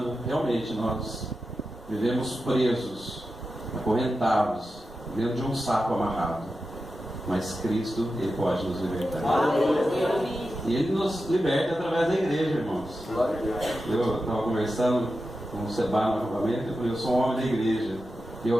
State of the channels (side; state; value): both; normal; correlation 0.91